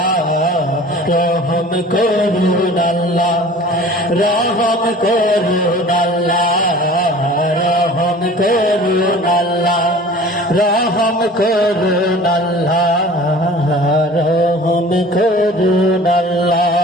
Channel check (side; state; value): both; normal; correlation 0.44